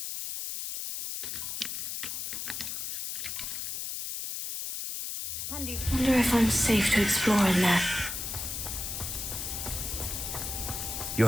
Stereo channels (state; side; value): noise; left; hiss, 4 dB below the sound